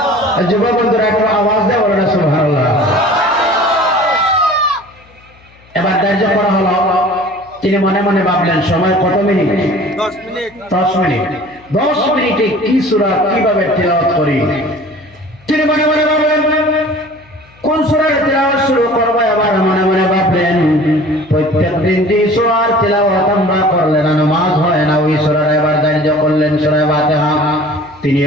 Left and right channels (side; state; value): left; noise; hum, 28 dB below the sound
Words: যুবক বন্ধুরা একটু আওয়াজ দিয়ে বলুন না সুবহানাল্লাহ। এবার ধার্য করা হলো, তিনি মনে মনে ভাবলেন সময় কত মিনিট? 10 মিনিট। 10 মিনিট। 10 মিনিটে কি সূরা কিভাবে তেলাওয়াত করি? তিনি মনে মনে ভাবলেন কোন সূরার তেলাওয়াত শুরু করব। এবার মনে মনে ভাবলেন প্রত্যেকদিন যে সূরার তেলাওয়াত আমরা করলে না নামাজ হয় না, ওই সূরার এবার ধার্য করলেন সূরা ফাতিহা। তিনি